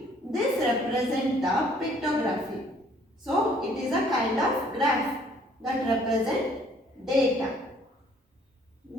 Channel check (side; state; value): both; normal; correlation 0.60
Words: This represents the pictography. So, it is a kind of graph that represents data.